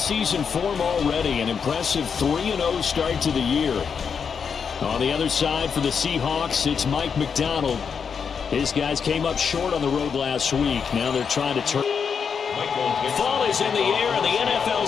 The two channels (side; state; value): right; quieter; 6.5 dB